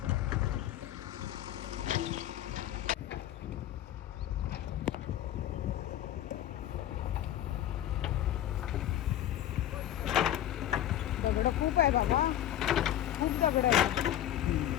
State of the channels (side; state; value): right; quieter; 12.1 dB